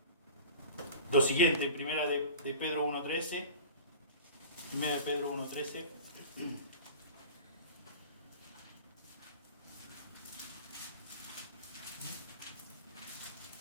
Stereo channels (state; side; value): inverted; both; correlation -0.38